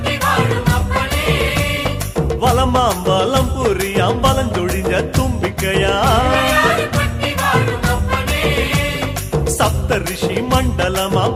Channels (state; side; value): identical; both; correlation 1.00